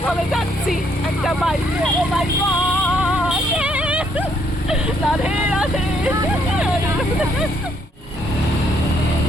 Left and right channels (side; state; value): both; normal; correlation 0.70